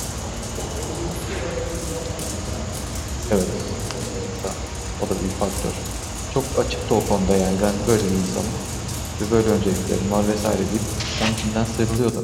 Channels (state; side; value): identical; both; correlation 1.00